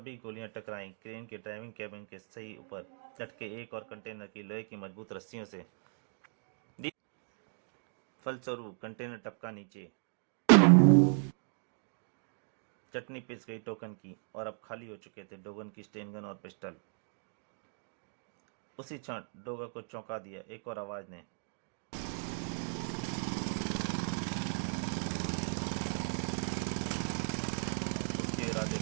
गोलियां टकराईं क्रेन के ड्राइविंग कैबिन के सही ऊपर लटके एक और कंटेनर की लोहे की मजबूत रस्सियों से। फलस्वरूप कंटेनर टपका नीचे। चटनी पिस गई टोकन की और अब खाली हो चुके थे डोगन की स्टेन गन और पिस्टल। उसी क्षण डोगा को चौंका दिया एक और आवाज ने। उसके इरादे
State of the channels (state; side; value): silent; left; 54 dB below the other